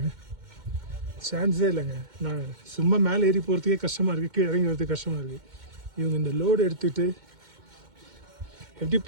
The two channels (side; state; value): left; late; 2.1 ms